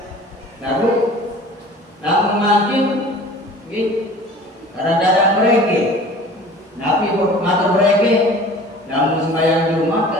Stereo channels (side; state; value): both; normal; correlation 0.44